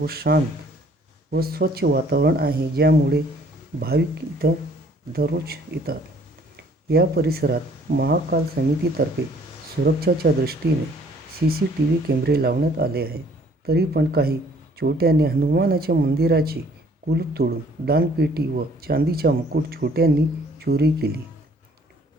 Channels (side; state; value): both; normal; correlation 0.59